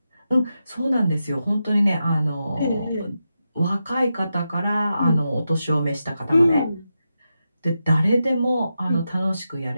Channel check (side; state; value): both; inverted; correlation -0.88